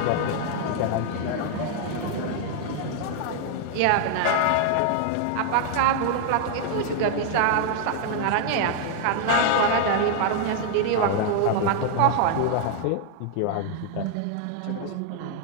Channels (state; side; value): different; both; correlation 0.00